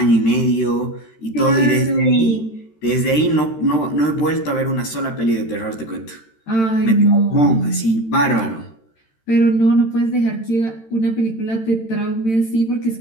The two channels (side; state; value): right; late; 13 ms